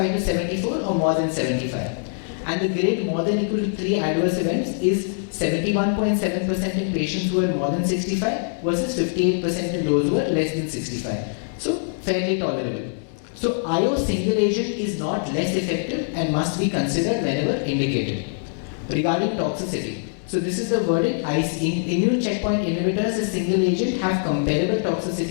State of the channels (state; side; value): silent; right; digital silence